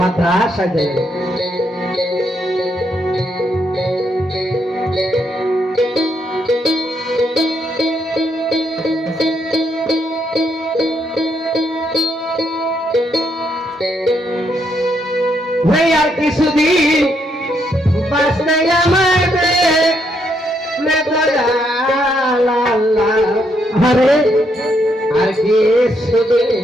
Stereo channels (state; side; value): normal; both; correlation 0.76